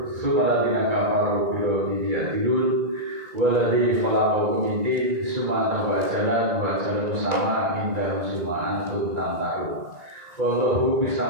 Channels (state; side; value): late; left; 1.9 ms